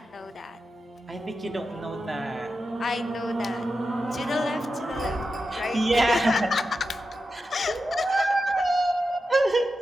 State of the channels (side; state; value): both; normal; correlation 0.90